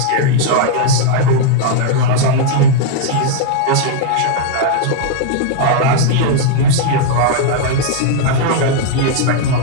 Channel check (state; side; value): different; both; correlation -0.01